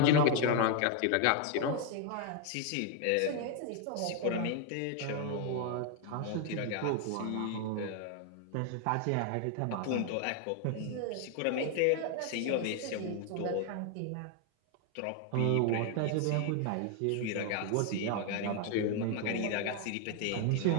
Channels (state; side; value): different; both; correlation 0.01